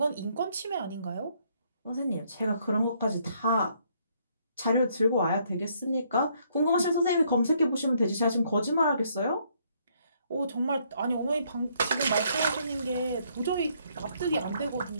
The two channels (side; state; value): both; inverted; correlation -0.69